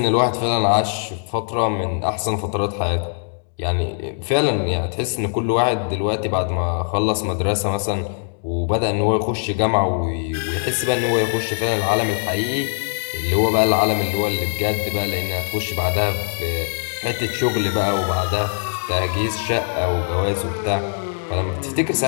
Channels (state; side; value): silent; right; digital silence